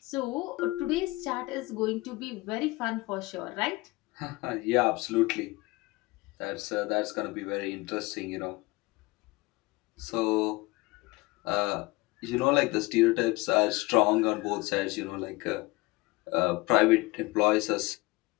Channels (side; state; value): right; quieter; 22.2 dB